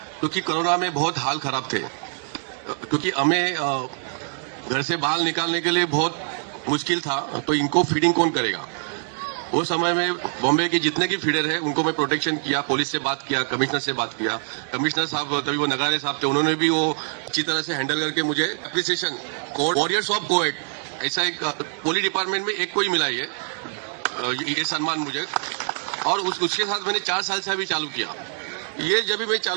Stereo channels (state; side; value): silent; left; 62 dB below the other